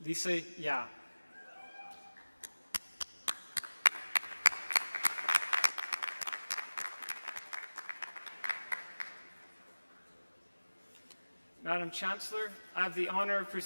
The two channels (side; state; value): both; inverted; correlation -1.00